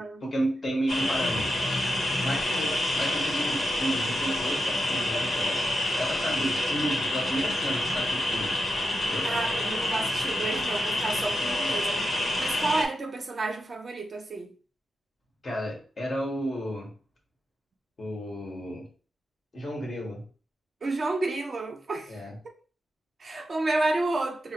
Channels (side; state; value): both; normal; correlation 0.87